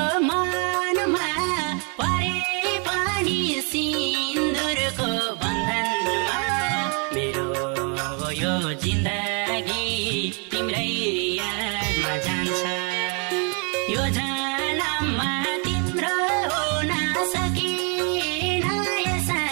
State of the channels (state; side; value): quieter; left; 36.9 dB